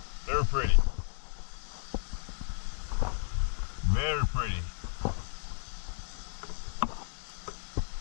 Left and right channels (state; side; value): silent; right; digital silence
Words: Very pretty. Very pretty.